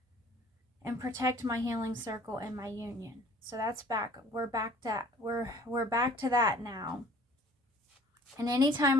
and protect my healing circle and my union. So that's back. We're back to that now. And anytime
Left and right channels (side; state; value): both; normal; correlation 0.51